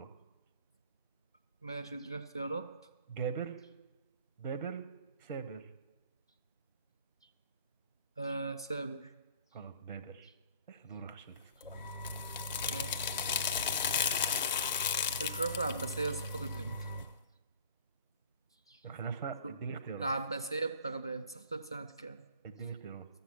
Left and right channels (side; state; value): both; inverted; correlation -0.46